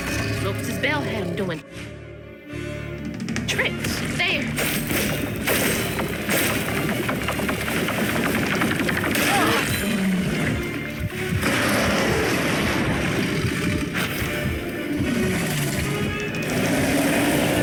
Lopez's bell had him doing tricks. There.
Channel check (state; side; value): identical; both; correlation 1.00